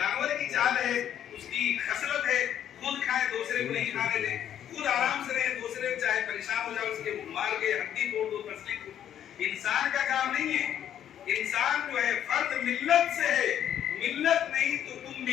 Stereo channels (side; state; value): right; quieter; 10.2 dB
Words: کی چال ہے، اس کی خصلت ہے، خود کھائے دوسرے کو نہیں کھانے دے، خود آرام سے رہے، دوسرے چاہے پریشان ہو جائے اس کے مار کے ہڈی توڑ دو، پسلی کو۔ انسان کا کام نہیں ہے، انسان جو ہے فرد ملت سے ہے، ملت نہیں تو تم